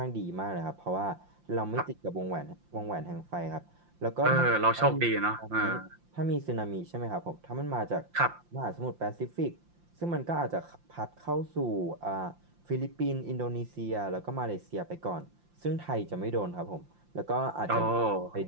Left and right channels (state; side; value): late; left; 5.7 ms